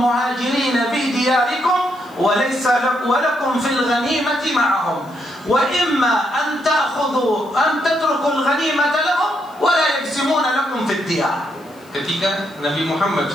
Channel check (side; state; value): left; noise; hiss, 29 dB below the sound